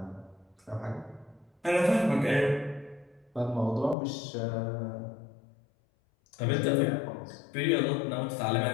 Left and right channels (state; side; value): drops out; right; at 4.0 s